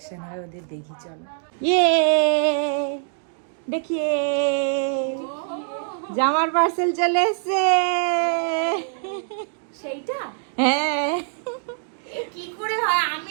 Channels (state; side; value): silent; left; digital silence